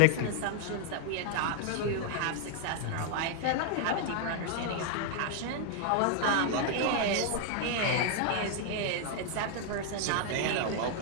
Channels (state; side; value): different; both; correlation 0.00